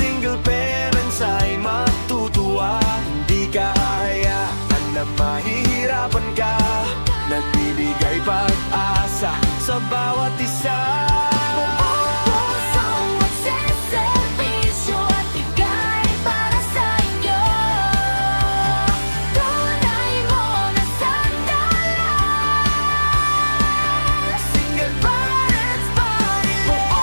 parents ay matutuwa. Hindi ka hahayaan na mahihirapan ka. Nagbibigay pag-asa sa bawat isa.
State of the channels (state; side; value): inverted; both; correlation -1.00